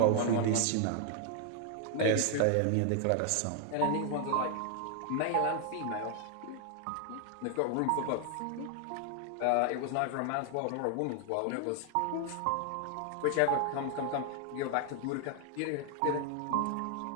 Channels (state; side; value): different; both; correlation 0.00